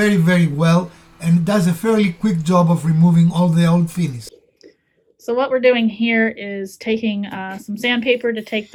very well and does a fairly quick job of removing all the old finish. So what we're doing here is taking some sandpaper to take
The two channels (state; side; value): identical; both; correlation 1.00